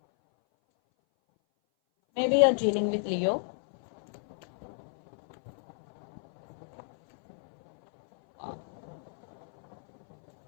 Maybe you're dealing with Leo.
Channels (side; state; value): right; silent; 57 dB below the other